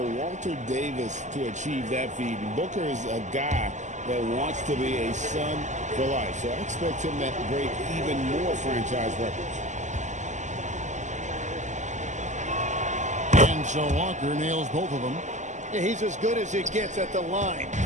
Walter Davis to achieve that feat. And Booker is a guy that wants to be a Sun for life. So I expect him to break even more franchise records. And so Walker nails both of them. Yeah, he's as good as it gets at the line.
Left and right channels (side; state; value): left; late; 0.34 ms